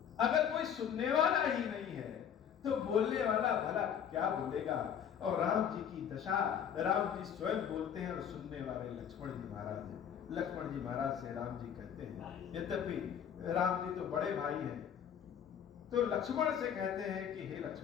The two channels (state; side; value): quieter; right; 8.5 dB